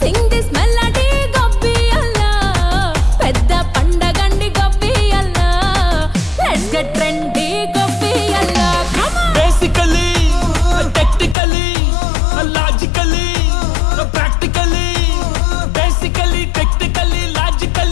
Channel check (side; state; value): right; drops out; at 11.4 s